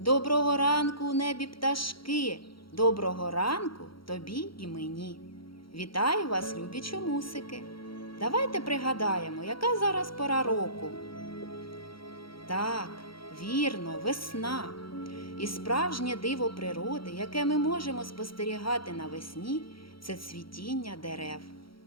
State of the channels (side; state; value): right; late; 0.74 ms